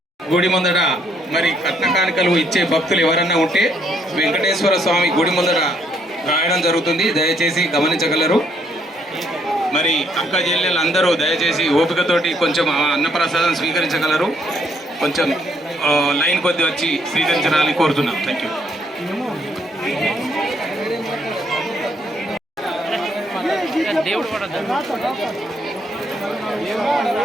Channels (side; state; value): both; normal; correlation 0.70